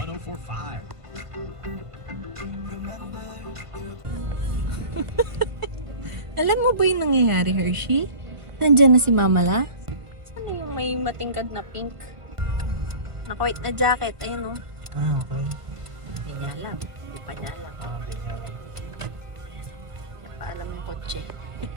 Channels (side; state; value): left; late; 1.3 ms